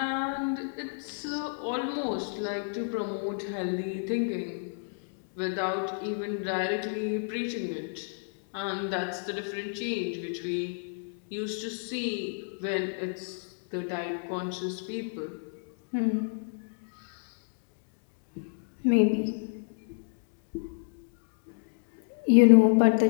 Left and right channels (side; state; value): right; silent; digital silence